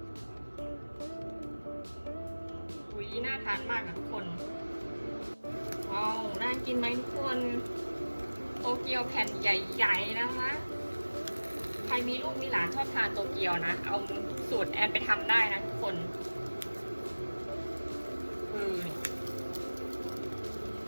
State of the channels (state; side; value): inverted; both; correlation -1.00